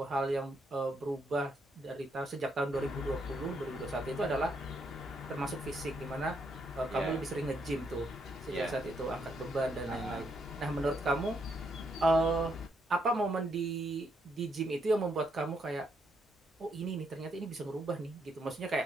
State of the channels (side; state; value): both; normal; correlation 0.76